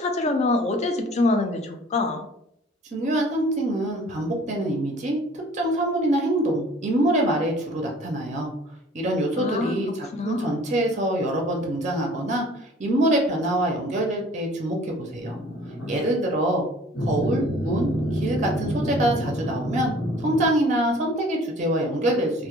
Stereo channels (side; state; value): both; normal; correlation 0.51